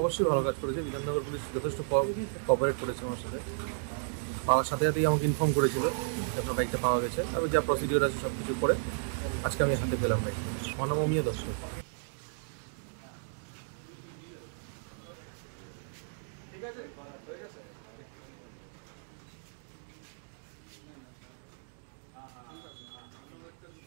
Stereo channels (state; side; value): silent; left; digital silence